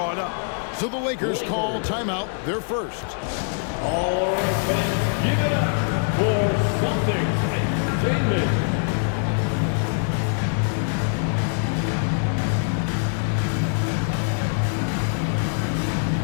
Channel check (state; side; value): silent; right; 60 dB below the other